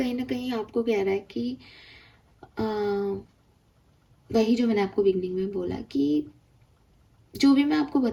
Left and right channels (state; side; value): identical; both; correlation 1.00